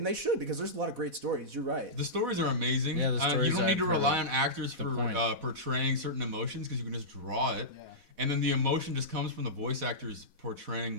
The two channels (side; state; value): left; late; 4.1 ms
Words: they should because there's a lot of great stories. You're right. The stories are amazing. Yeah, the You stories don't need to I've heard rely of. on actors The for point. portraying certain emotions because you can just draw it. Yeah. And then the emotion just comes from the voice actors portraying